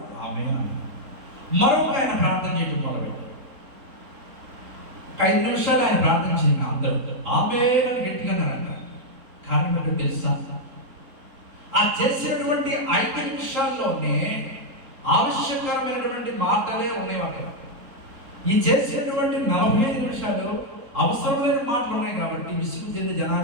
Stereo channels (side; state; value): left; late; 4.0 ms